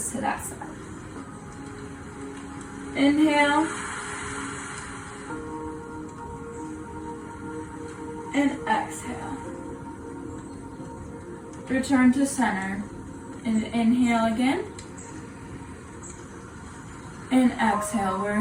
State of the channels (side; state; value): both; identical; correlation 1.00